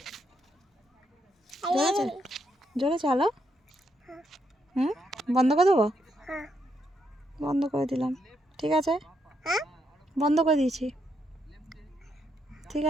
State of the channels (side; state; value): both; normal; correlation 0.77